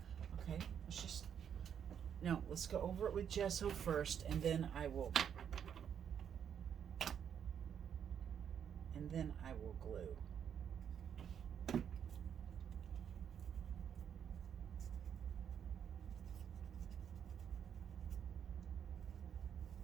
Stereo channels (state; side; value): quieter; left; 8.3 dB